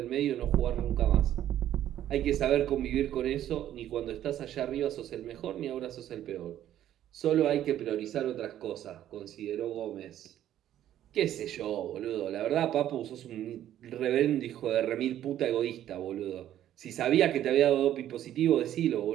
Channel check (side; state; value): left; quieter; 11.8 dB